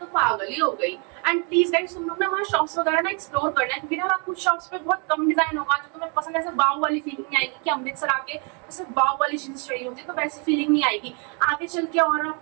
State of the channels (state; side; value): quieter; left; 35.6 dB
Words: पागल ही हो गई। एंड प्लीज गाइस तुम लोग ना वहाँ शॉप्स वगैरह ना एक्सप्लोर करना है, क्योंकि ना कुछ शॉप्स पे बहुत कम डिजाइन होगा जो तुम्हें पसंद, ऐसे वाव वाली फीलिंग नहीं आएगी कि अमृतसर आके जैसे वाव वाली चीज चाहिए होती है, तो वैसी फीलिंग नहीं आएगी। आगे चल के और